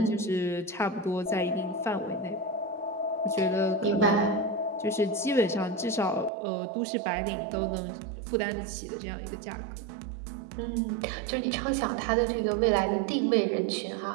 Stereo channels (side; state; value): left; drops out; at 6.3 s